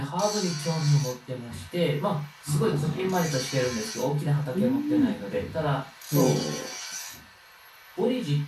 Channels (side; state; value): both; identical; correlation 1.00